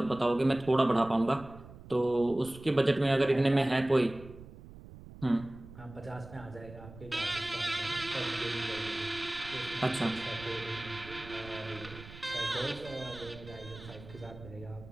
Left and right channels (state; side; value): noise; right; rumble, 17 dB below the sound